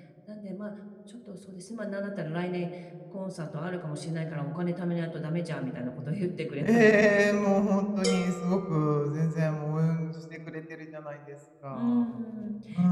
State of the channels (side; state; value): both; identical; correlation 1.00